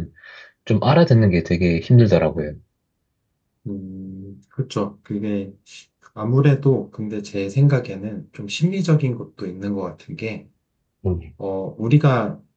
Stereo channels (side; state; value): both; identical; correlation 1.00